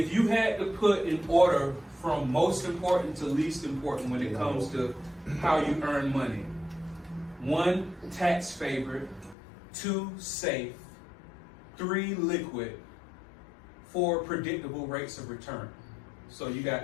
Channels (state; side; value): drops out; right; at 9.3 s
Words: you had to put in order from most important to least important when it comes to how you earn money: 1, tax favored; 2, safe; 3, liquid; 4, predictable rates of return. So you